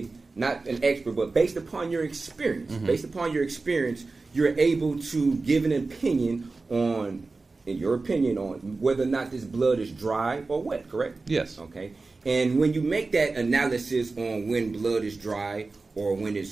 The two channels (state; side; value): quieter; left; 3.7 dB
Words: not an expert, but based upon your experience, you're able to give an opinion on, in your opinion, on whether or not this blood is dry or wet, correct? Yes. Okay. And when you make that analysis on when blood is dry or when